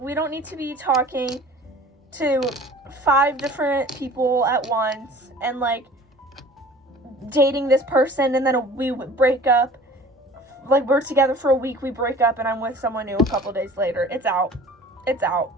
don't need to be talking to 5 different people at once and, like, dating this person and then we break up. Like, we're together for a week, we break up, and I'm with someone new a couple days later. It's out. It's out.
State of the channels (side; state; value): both; normal; correlation 0.45